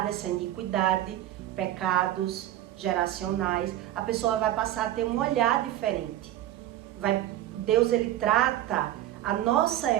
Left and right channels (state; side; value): quieter; left; 13.3 dB